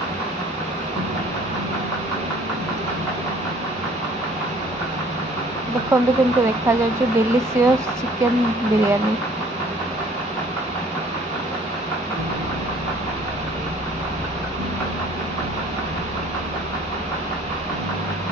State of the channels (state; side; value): normal; both; correlation 0.53